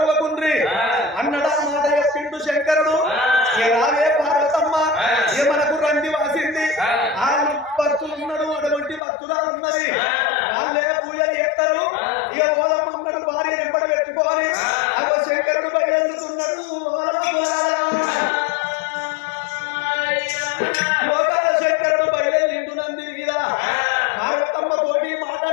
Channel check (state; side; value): drops out; right; at 9.0 s